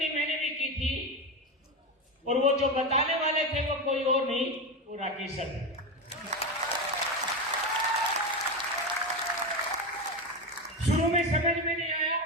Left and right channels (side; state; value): both; normal; correlation 0.16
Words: मैंने भी की थी, और वो जो बताने वाले थे वो कोई और नहीं, वो राकेश सर थे। शुरू में समझ में नहीं आया,